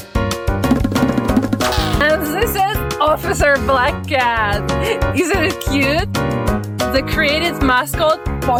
And this is Officer Black Cat. Isn't it cute? The creative mascot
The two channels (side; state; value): both; identical; correlation 1.00